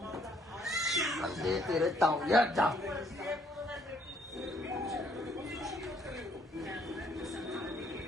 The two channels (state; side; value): normal; both; correlation 0.66